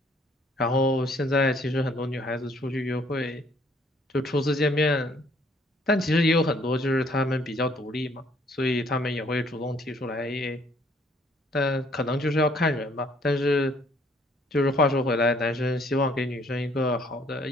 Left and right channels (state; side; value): normal; both; correlation 0.62